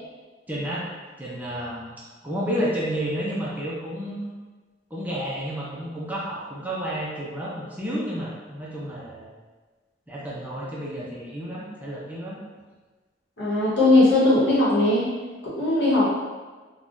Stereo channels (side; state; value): both; normal; correlation 0.55